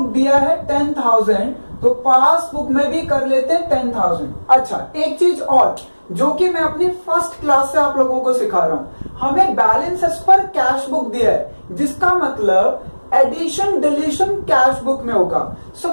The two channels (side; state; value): both; inverted; correlation -1.00